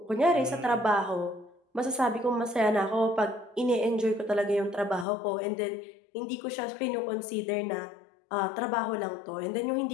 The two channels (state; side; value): drops out; right; at 5.1 s